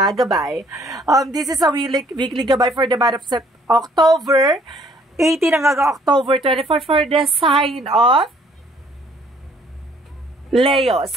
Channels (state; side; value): normal; both; correlation 0.61